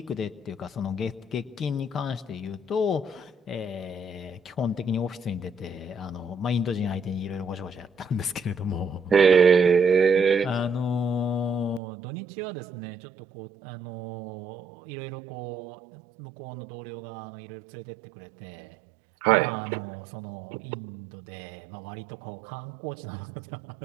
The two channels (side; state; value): left; drops out; at 11.8 s